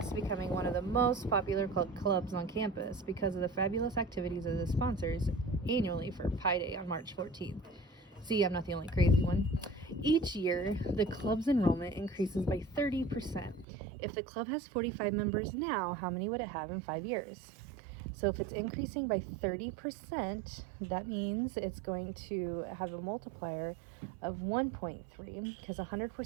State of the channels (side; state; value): left; drops out; at 13.7 s